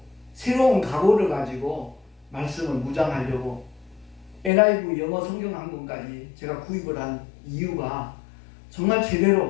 새로운 각오를 가지고 말씀을 묵상하려고 NIV 영어 성경 한 권까지 제가 구입을 한 이유가 정말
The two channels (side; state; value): right; drops out; at 4.5 s